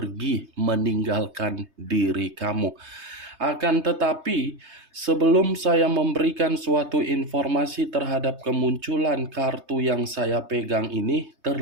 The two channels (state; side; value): late; left; 3.2 ms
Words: meninggalkan diri kamu. Akan tetapi, sebelum saya memberikan suatu informasi terhadap kemunculan kartu yang saya pegang ini,